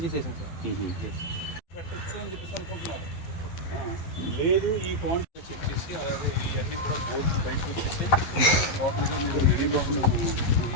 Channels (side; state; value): right; late; 11 ms